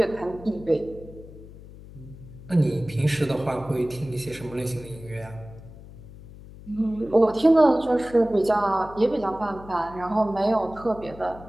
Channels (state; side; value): noise; left; hum, 17 dB below the sound